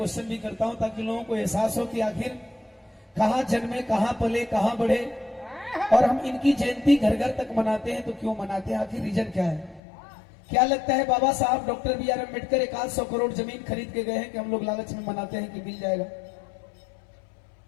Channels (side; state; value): right; drops out; at 9.8 s